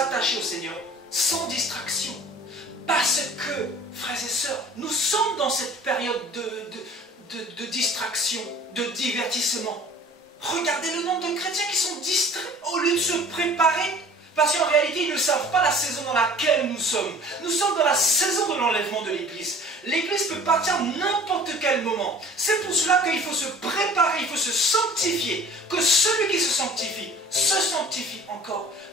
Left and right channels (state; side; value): normal; both; correlation 0.48